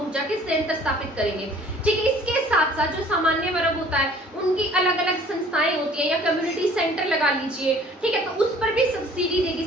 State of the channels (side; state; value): both; normal; correlation 0.53